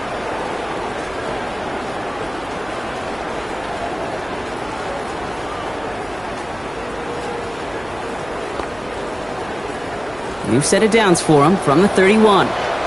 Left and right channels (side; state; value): right; noise; hum, 21 dB below the sound